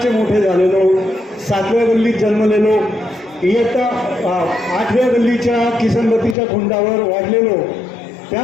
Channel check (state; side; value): drops out; right; at 6.4 s